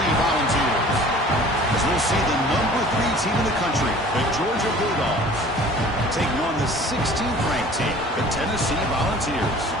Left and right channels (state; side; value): normal; both; correlation 0.47